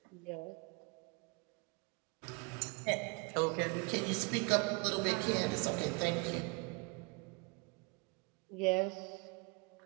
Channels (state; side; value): quieter; left; 30.1 dB